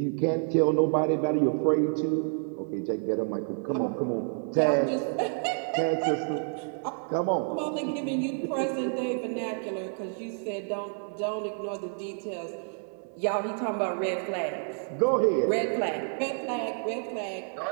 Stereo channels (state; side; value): silent; left; 59 dB below the other